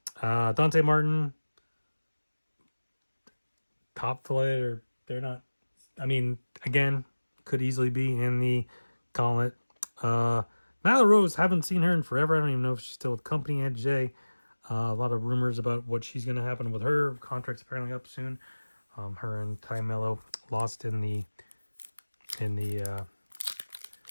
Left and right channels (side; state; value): both; inverted; correlation -1.00